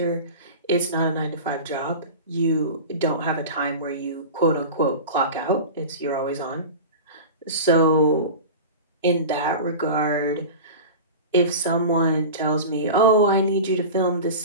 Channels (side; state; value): both; inverted; correlation -0.31